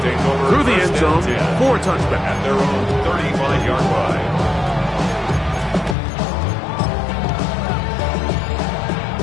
through the end zone for a touchback. At their own 35-yard line.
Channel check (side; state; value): right; drops out; at 6.0 s